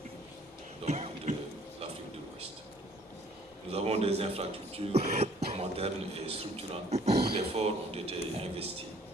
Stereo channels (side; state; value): both; normal; correlation 0.58